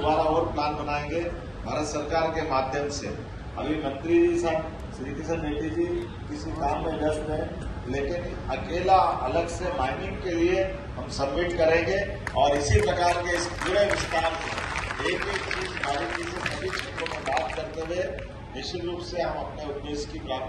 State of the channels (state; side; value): identical; both; correlation 1.00